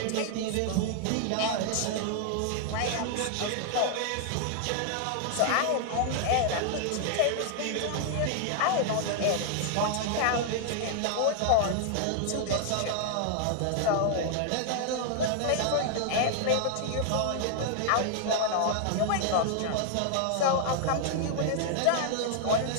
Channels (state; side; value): different; both; correlation 0.00